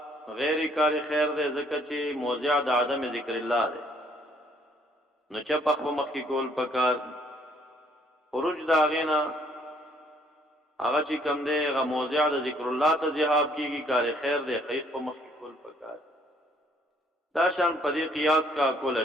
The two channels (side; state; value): both; normal; correlation 0.64